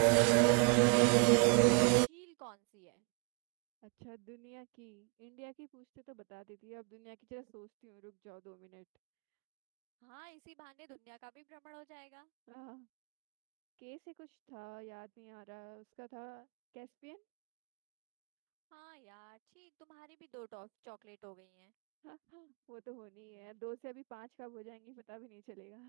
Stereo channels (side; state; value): left; quieter; 35.9 dB